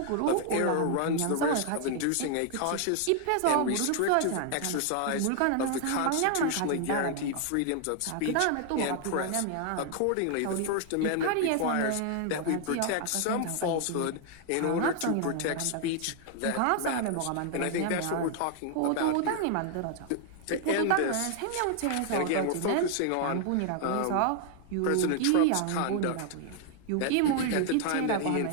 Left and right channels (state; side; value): different; both; correlation 0.00